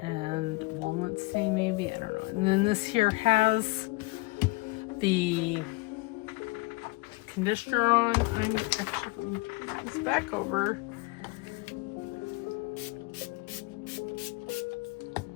walnut stain, maybe, I don't know. And then this here has the conditioner on. I'm actually going to put this back over.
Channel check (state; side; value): quieter; right; 23.5 dB